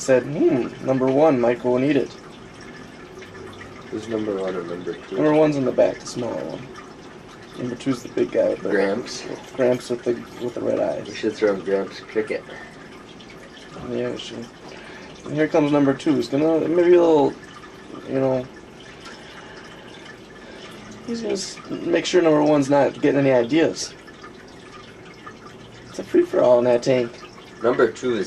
number 1 might go and eat it. Who's number 1 or number 2? Number 1's in the back, the smaller one. Number 2's the big guy with the Gramps. Gramps with the red eyes. We should throw Gramps cricket. Yeah, we should. And here comes number 2. He's gonna maybe a little, he's gonna make sure number 1's not getting any ideas. It's a free for all in that tank. Number 2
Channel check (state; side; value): identical; both; correlation 1.00